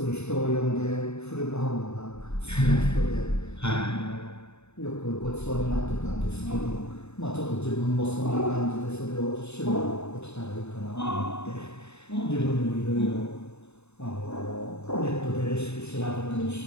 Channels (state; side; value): late; right; 0.81 ms